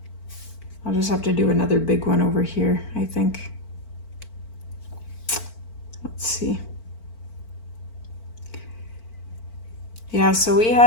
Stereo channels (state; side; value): late; right; 4.4 ms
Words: I'll just have to do another big one over here, I think. Let's see. Yeah, so we